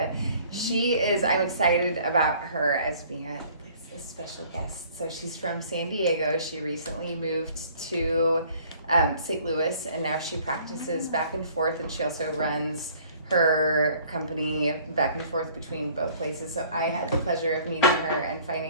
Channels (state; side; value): inverted; both; correlation -0.55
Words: I'm excited about her as being a special guest. So she's from San Diego. She recently moved to St. Louis, and now she practices back and forth, and she also runs her company back and forth between both places. So I had the pleasure of meeting her and